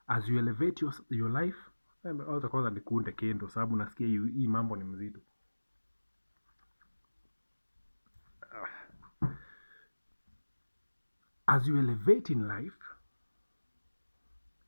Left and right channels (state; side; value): inverted; both; correlation -1.00